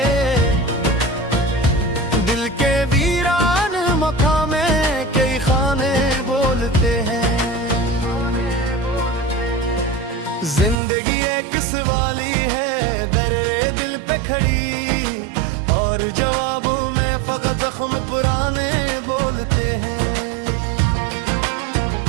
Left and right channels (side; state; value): left; drops out; at 10.8 s